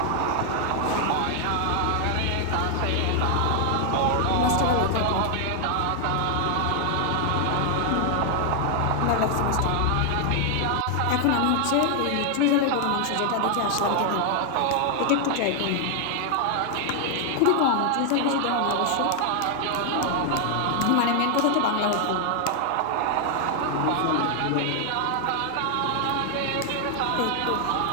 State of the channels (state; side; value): different; both; correlation 0.00